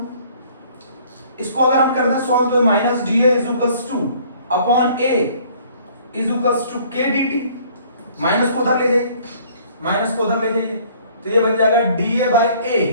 इसको अगर हम करते हैं सॉल्व, तो minus D a is equals to upon a is equals to k d T, minus को उधर ले जाइए, माइनस को उधर ले जाइए, तो ये बन जाएगा d A by a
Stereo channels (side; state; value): both; inverted; correlation -0.56